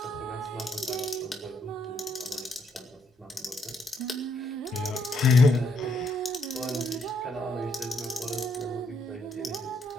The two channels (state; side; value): normal; both; correlation 0.73